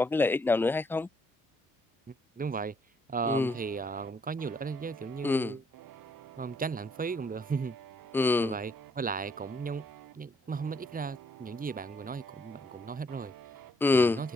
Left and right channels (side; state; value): both; normal; correlation 0.70